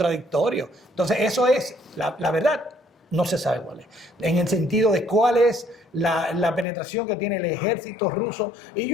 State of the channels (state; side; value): drops out; right; at 6.7 s